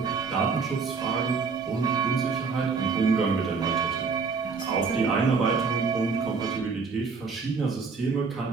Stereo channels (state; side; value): quieter; left; 5.0 dB